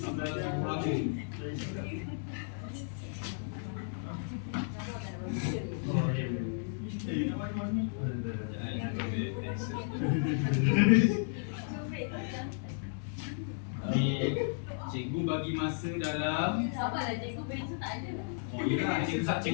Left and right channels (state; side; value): silent; right; digital silence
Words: belajar. Oh, dia. Nak mana ni? Jangan ambil pensel. Cikgu bagi masa dalam Sabarlah, cikgu pensel tak ada. Oh iyalah,